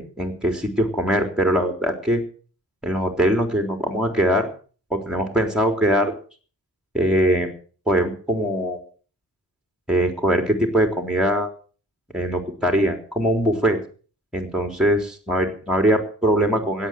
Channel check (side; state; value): both; normal; correlation 0.51